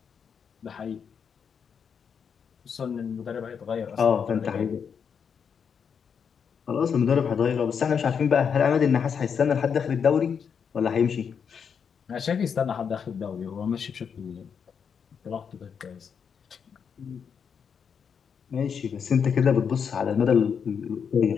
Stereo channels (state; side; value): quieter; right; 6.9 dB